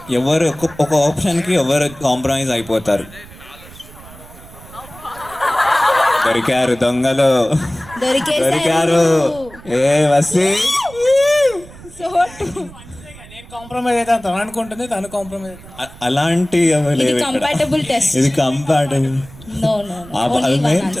ఎవరు ఒక ఆప్షన్కి ఎవరు కాంప్రమైజ్ అయిపోతారు. దొరికారు దొంగలు, దొరికారు. ఏ వసి సో నేను కాంప్రమైజ్ అయితే తను అనుకుంటుంది, తను కాంప్రమైజ్ అయితే అలాంటి ఏమీ లేవు ఇక్కడ. Compatible test. ఇది compatible. No no only one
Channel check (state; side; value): noise; right; rumble, 20 dB below the sound